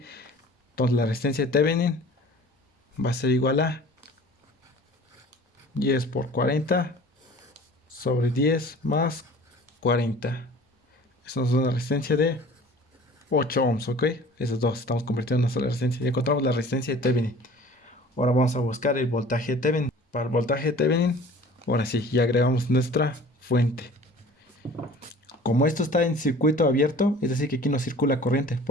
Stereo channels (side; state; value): both; normal; correlation 0.46